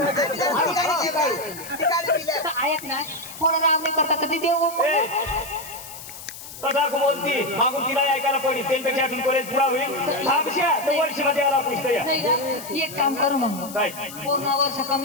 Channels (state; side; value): noise; left; hiss, 13 dB below the sound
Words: जरा ठिकाणी पिलं. तर ऐक ना कोण राम नाही करता कधी देऊ तदा बोलती मागून तिला ऐकायला पडली त्यांच्यापेक्षा अजून कॉलेज पुरा होईल थांबशा तर वर्षमध्ये याला पुस्तक या नाही का? एक काम करू मग काय पूर्ण वर्ष